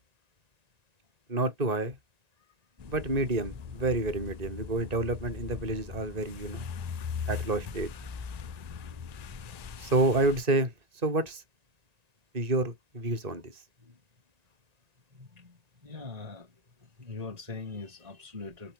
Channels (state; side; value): late; left; 1.9 ms